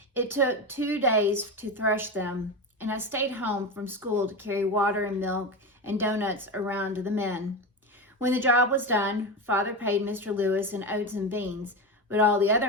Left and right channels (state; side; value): normal; both; correlation 0.20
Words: It took 2 days to thresh them, and I stayed home from school to carry water and milk and donuts around to the men. When the job was done, Father paid Mr. Lewis in oats and beans, but all the